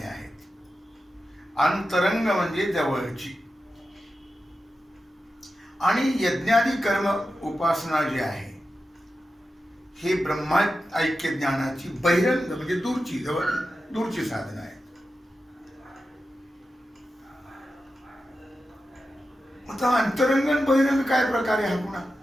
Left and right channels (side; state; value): both; normal; correlation 0.91